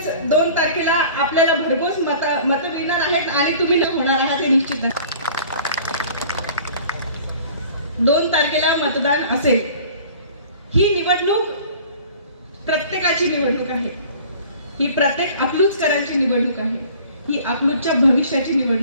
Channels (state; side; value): inverted; both; correlation -0.47